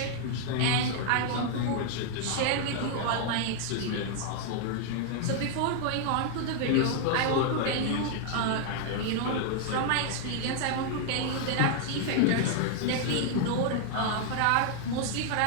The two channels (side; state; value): both; different; correlation 0.00